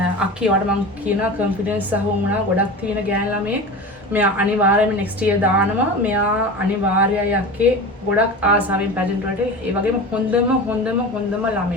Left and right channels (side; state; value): both; normal; correlation 0.31